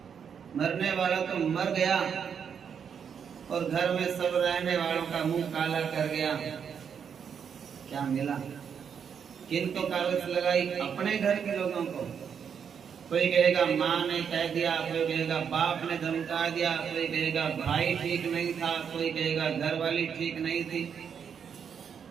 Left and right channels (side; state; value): left; quieter; 7.3 dB